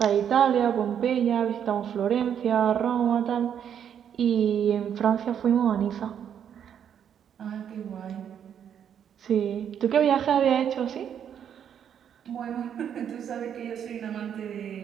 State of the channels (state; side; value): quieter; left; 8.8 dB